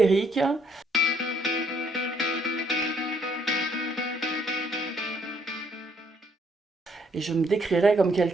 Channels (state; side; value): normal; both; correlation 0.68